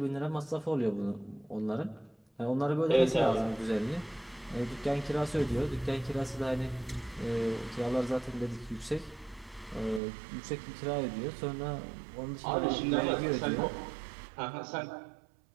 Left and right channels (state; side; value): drops out; left; at 10.0 s